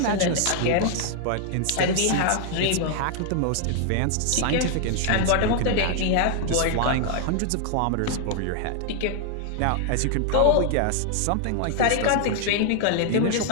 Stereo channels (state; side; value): different; both; correlation 0.00